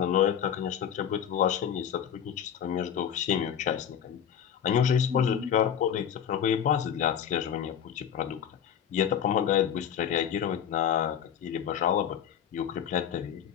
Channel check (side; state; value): right; quieter; 8.9 dB